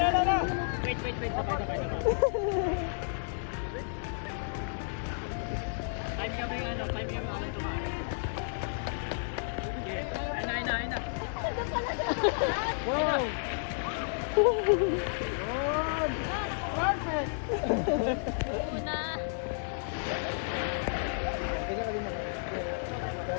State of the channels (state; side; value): silent; right; digital silence